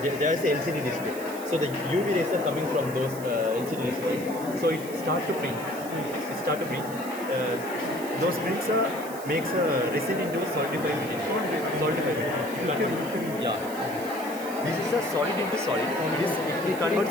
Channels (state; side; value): noise; right; hiss, 15 dB below the sound